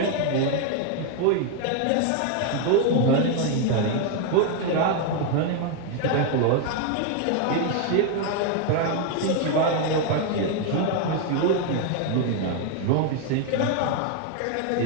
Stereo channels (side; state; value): both; different; correlation 0.01